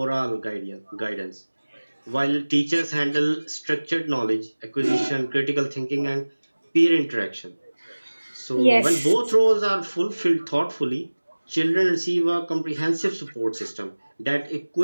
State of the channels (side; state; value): both; inverted; correlation -1.00